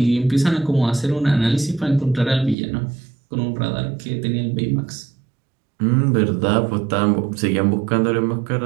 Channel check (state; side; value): drops out; left; at 2.6 s